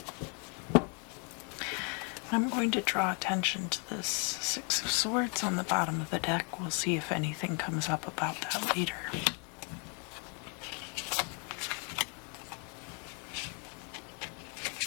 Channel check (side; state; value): right; quieter; 37.2 dB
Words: I'm going to draw attention to this Six of Swords on the bottom of the deck. We'll see if anything comes up about that later.